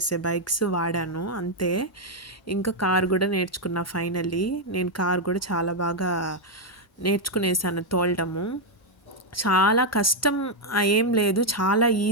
బైక్స్ వాడాను అంతే. ఇంకా కార్ కూడా నేర్చుకున్నా ఫైనల్లీ. నేను కార్ కూడా చాలా బాగా నేర్చుకునేసాను తోలడము. చాలా కష్టం ఏం లేదు, చాలా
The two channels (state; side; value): normal; both; correlation 0.01